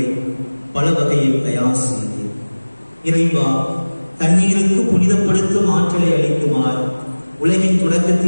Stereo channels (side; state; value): both; inverted; correlation -1.00